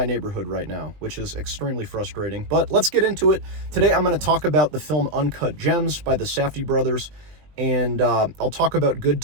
neighborhood right now, which is extremely frustrating. But let's get into it. Today I'm going to talk about the film Uncut Gems by the Safdie brothers, and I'll talk about Good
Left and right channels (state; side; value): late; left; 20 ms